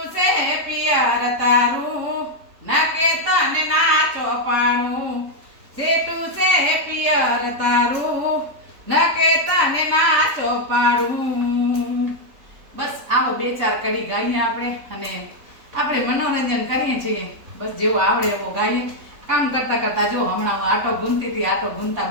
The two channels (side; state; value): left; late; 3.6 ms